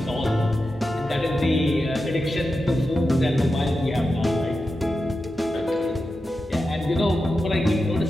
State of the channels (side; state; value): both; normal; correlation 0.90